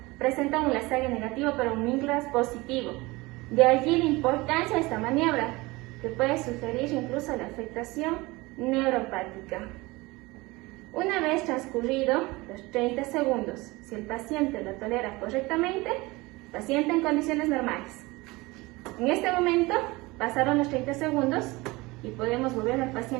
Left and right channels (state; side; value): quieter; left; 22.3 dB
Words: presentan un Lasague negativo pero un Mingras positivo. De allí la importancia de esta maniobra, que puede sugerir incluso la afectación neuropática. Una vez transcurrido los 30 segundos, si el paciente lo tolera correctamente, paciente en condiciones normales. En este momento pasaron los 30 segundos y podemos volver al